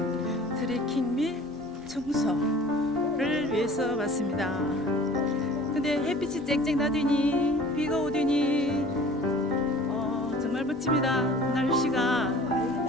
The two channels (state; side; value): normal; both; correlation 0.46